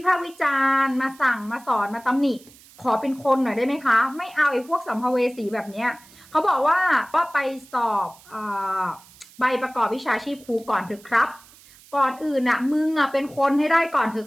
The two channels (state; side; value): noise; right; hiss, 24 dB below the sound